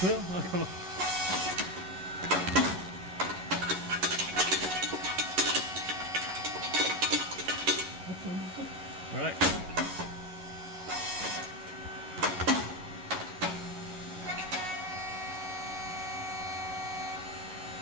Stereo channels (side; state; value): left; late; 11 ms